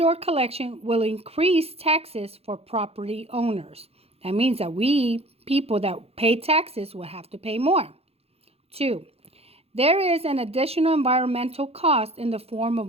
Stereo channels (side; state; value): left; late; 0.29 ms